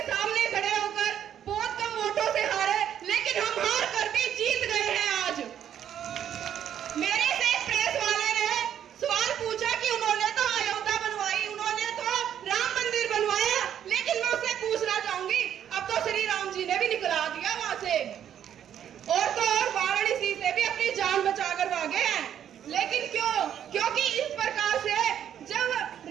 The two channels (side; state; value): left; quieter; 9.8 dB